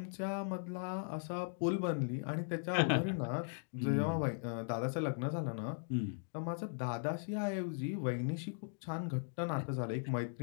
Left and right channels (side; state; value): right; silent; digital silence